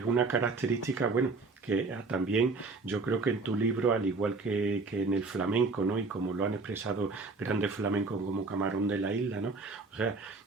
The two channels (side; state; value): left; quieter; 3.8 dB